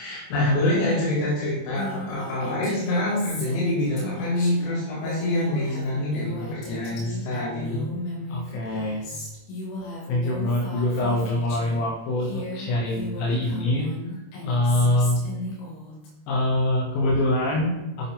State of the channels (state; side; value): late; right; 26 ms